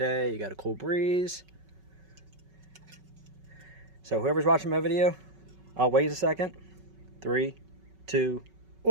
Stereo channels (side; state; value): left; late; 5.3 ms